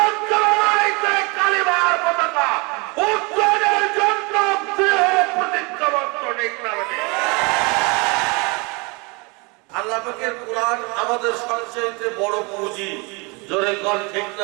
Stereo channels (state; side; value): quieter; left; 28.9 dB